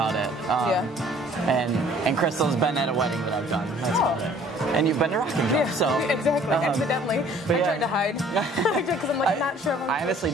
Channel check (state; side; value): normal; both; correlation 0.55